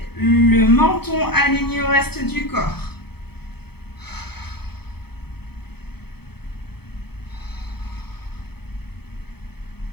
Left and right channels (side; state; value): right; late; 0.96 ms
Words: le menton aligné au reste du corps.